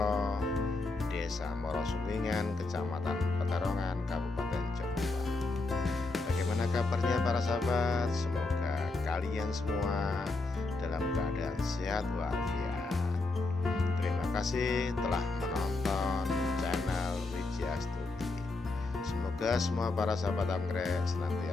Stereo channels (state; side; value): quieter; right; 3.4 dB